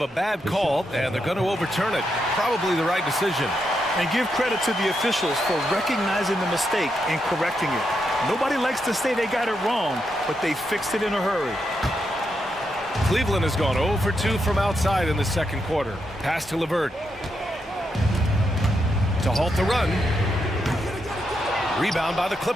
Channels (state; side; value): normal; both; correlation 0.83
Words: a bad call, and they're going to overturn it. Probably the right decision. And give credit to the officials for recognizing the mistake and correcting it. Nobody likes to say they got it wrong, but they fixed it in a hurry. Cleveland has gone 0 for 2 from outside in the second quarter. Pass to LeVert. To halt the run. Rebound by the